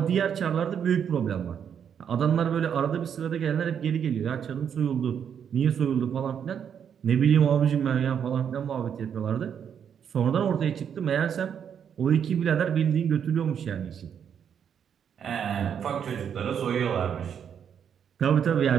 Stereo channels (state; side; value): quieter; left; 8.1 dB